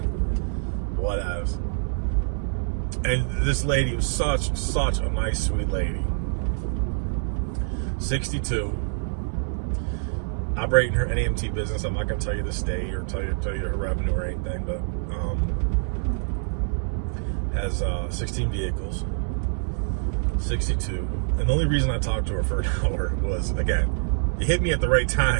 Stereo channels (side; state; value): left; silent; digital silence